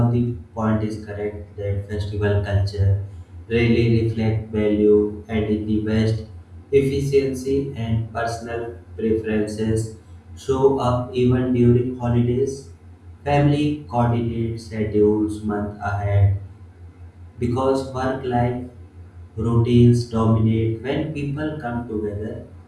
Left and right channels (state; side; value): identical; both; correlation 1.00